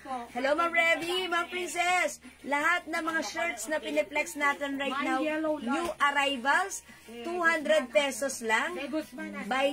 Hello, Ma'am Revy, Ma'am Princess. Lahat ng mga shirts na piniplex natin right now, new arrivals, 200 pesos lang.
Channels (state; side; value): identical; both; correlation 1.00